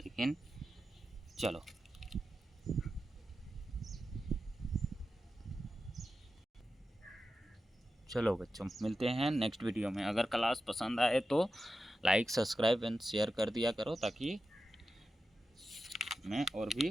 चलो। चलो बच्चों, मिलते हैं नेक्स्ट वीडियो में। अगर क्लास पसंद आए तो लाइक सब्सक्राइब एंड शेयर कर दिया करो, ताकि मैं और भी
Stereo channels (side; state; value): both; normal; correlation 0.91